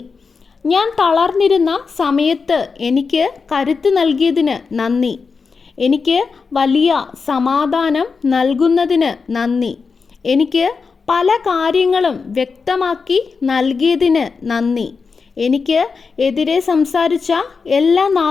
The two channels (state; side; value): quieter; right; 5.0 dB